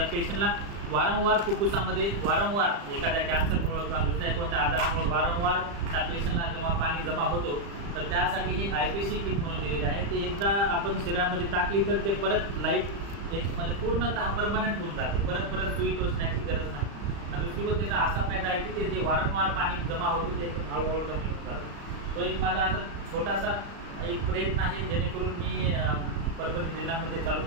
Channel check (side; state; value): left; late; 35 ms